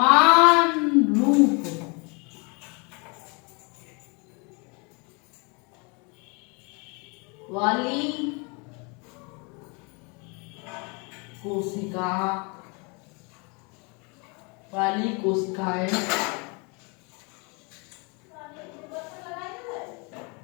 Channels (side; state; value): right; quieter; 31.7 dB